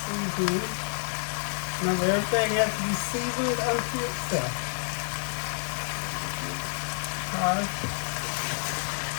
Remember, everything has to be seasoned unto itself. Alright.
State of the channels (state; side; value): silent; right; digital silence